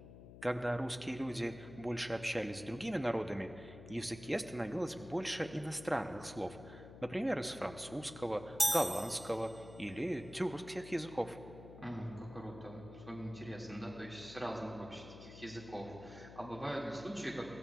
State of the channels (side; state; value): left; noise; hum, 14 dB below the sound